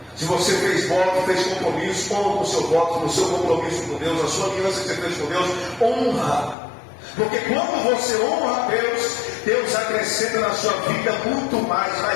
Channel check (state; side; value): drops out; right; at 6.6 s